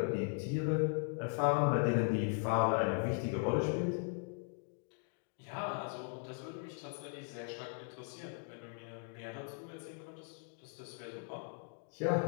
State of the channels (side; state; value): right; silent; 52 dB below the other